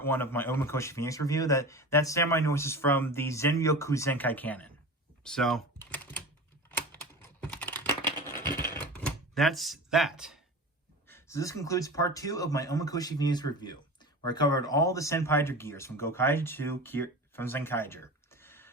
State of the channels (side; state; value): both; normal; correlation 0.32